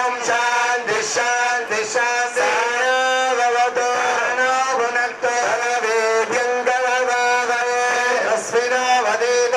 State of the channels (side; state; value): both; identical; correlation 1.00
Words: శాంతి శాంతి శాంతి భవతు నో భునక్తు వేద్యం కలవావహే అస్మినో